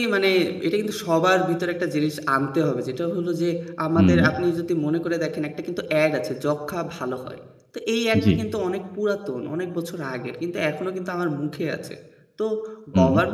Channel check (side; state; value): both; identical; correlation 1.00